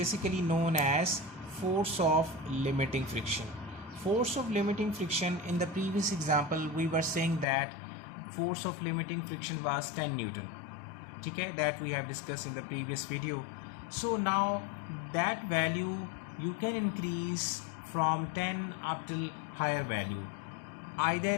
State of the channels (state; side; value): drops out; right; at 7.5 s